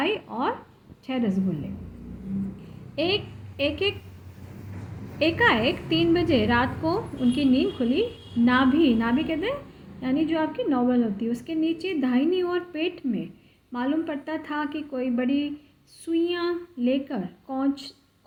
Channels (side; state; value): both; identical; correlation 1.00